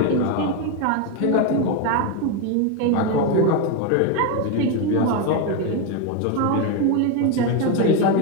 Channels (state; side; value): different; both; correlation 0.02